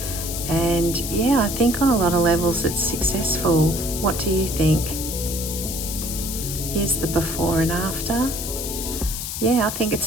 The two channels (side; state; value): left; noise; hiss, 5 dB below the sound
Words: And yeah, I think on a lot of levels it's successful. What do you think? Here's the before and after. Yeah, I think